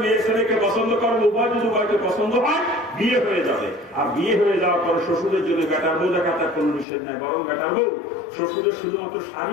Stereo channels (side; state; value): right; drops out; at 6.9 s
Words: মেয়ে ছেলেকে পছন্দ করবে, উভয় যদি উভয়কে পছন্দ হয়, বিয়ে হয়ে যাবে। আর বিয়ে হয়ে যাওয়ার পরে শ্বশুরের জন্য বেটার বউ দেখা তার কোনো নিষেধ নেই, বরং বেটার বউ শ্বশুরের শুধুমাত্র